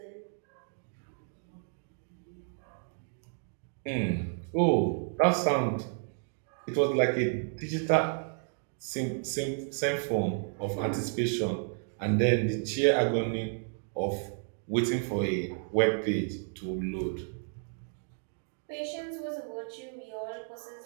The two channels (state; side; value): silent; left; 57 dB below the other